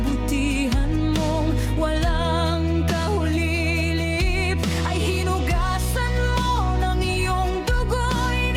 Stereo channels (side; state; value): both; identical; correlation 1.00